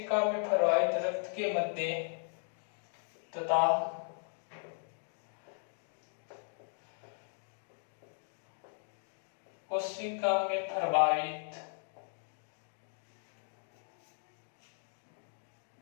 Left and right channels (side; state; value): right; silent; 53 dB below the other